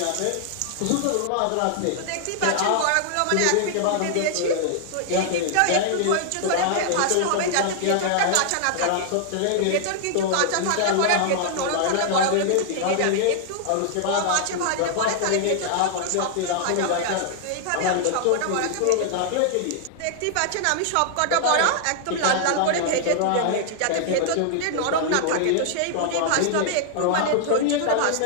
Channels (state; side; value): different; both; correlation 0.00